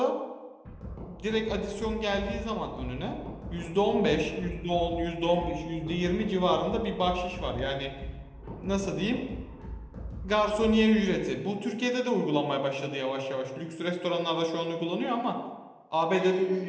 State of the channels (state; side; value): identical; both; correlation 1.00